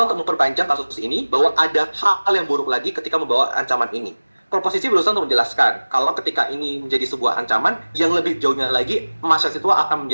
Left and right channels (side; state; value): both; inverted; correlation -1.00